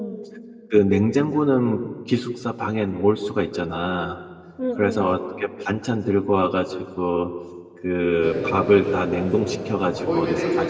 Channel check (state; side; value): identical; both; correlation 1.00